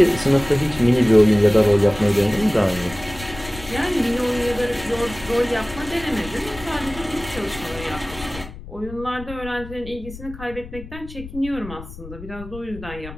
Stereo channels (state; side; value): noise; left; rumble, 14 dB below the sound